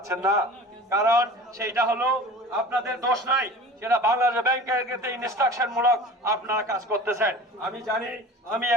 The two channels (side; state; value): both; normal; correlation 0.39